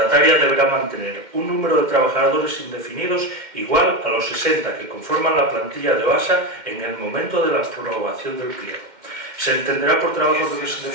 deberá mantener un número de trabajadores indefinidos igual a los 60 que conforman la plantilla de OASA en el momento de la aprobación del pliego. Se entenderá por trabajadores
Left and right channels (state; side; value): late; left; 2.1 ms